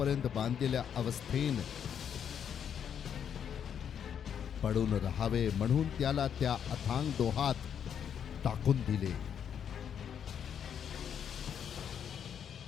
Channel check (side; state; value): right; quieter; 8.3 dB